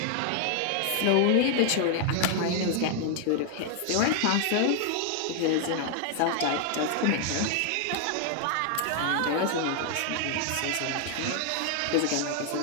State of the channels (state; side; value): different; both; correlation 0.00